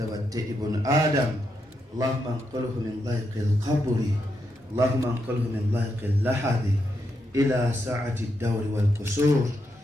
ابن آدم. اللهم انقله من ضيق القبر، اللهم انقله من ضيق اللحد إلى سعة الدور والقصور،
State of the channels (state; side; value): normal; both; correlation 0.82